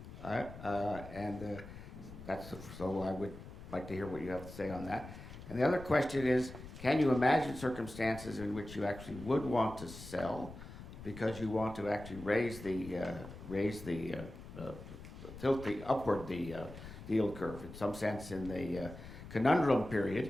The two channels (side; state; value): left; noise; rumble, 13 dB below the sound